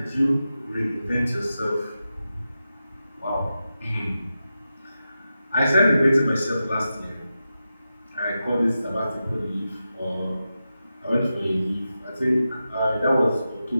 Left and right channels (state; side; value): inverted; both; correlation -0.91